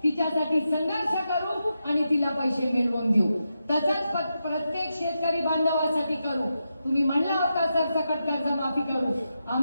तिच्यासाठी संघर्ष करू आणि तिला पैसे मिळवून देऊ. तसंच प्रत्येक शेतकरी बांधवासाठी करू. तुम्ही म्हणला होता सरसकट कर्जमाफी करू,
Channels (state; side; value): inverted; both; correlation -0.87